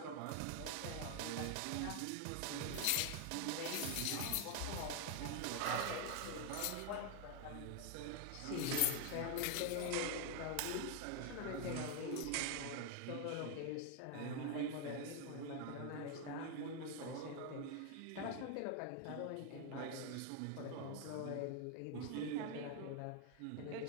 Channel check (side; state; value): both; different; correlation 0.01